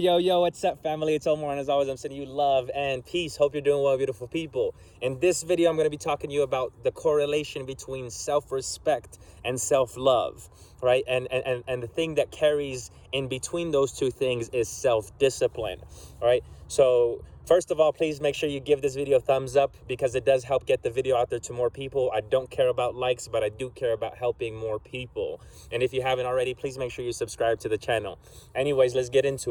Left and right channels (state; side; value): identical; both; correlation 1.00